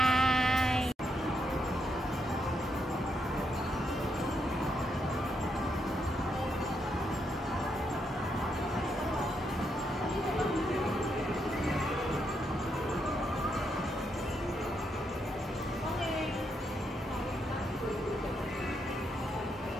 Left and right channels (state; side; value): normal; both; correlation 0.79